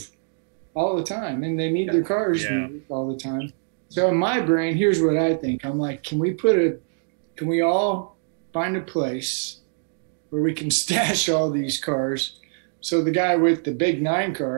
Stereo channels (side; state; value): left; silent; digital silence